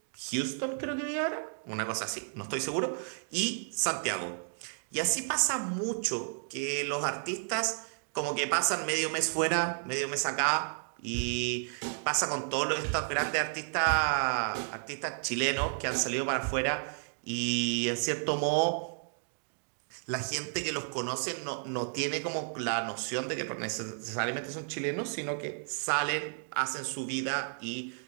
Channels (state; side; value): silent; left; digital silence